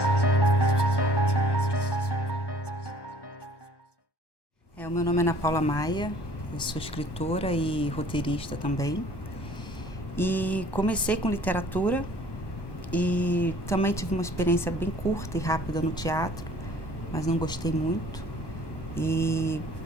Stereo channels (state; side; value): late; right; 1.2 ms